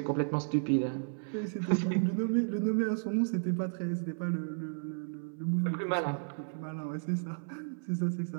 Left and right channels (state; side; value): silent; left; 56 dB below the other